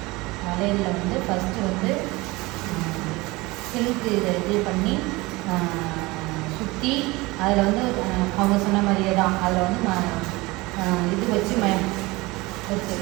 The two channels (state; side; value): quieter; left; 22.3 dB